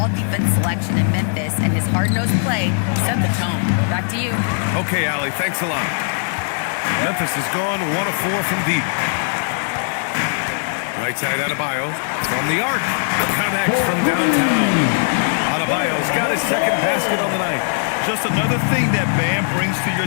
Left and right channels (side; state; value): right; silent; digital silence